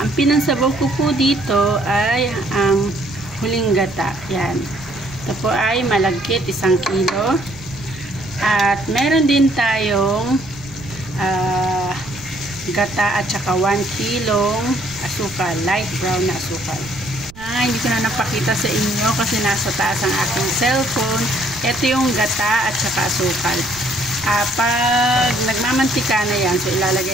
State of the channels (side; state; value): right; noise; rumble, 20 dB below the sound